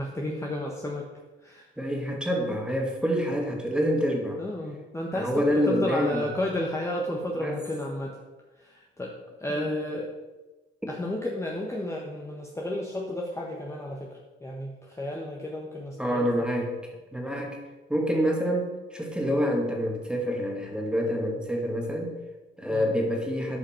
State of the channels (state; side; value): normal; both; correlation 0.74